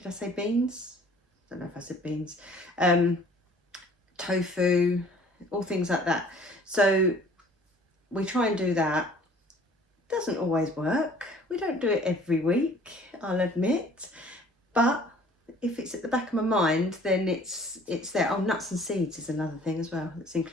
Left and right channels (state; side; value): normal; both; correlation 0.53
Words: I say beans? I don't know if I said beans. Tofu, all things like that. So we try and do that. Doesn't always work. We don't do it every week, I'll admit, but if it's at the back of my mind, then it's there. Oh, nuts and seeds is another thing as well that's